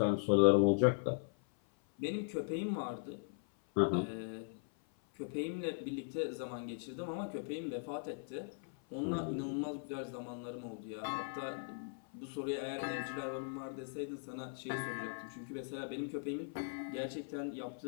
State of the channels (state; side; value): silent; right; 52 dB below the other